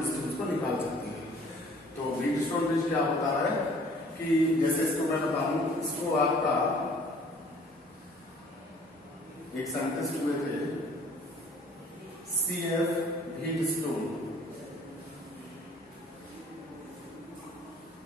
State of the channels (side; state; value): both; normal; correlation 0.54